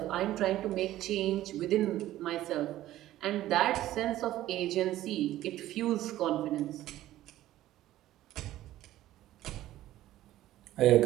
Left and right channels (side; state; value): left; quieter; 14.3 dB